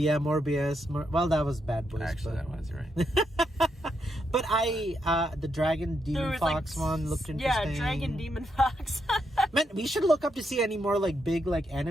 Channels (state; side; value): normal; both; correlation 0.80